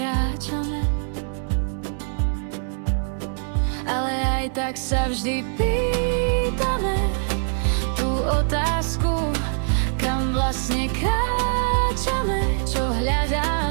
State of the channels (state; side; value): silent; left; digital silence